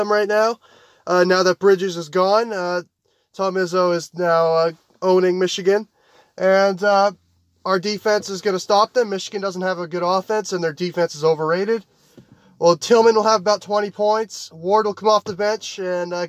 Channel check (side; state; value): both; identical; correlation 1.00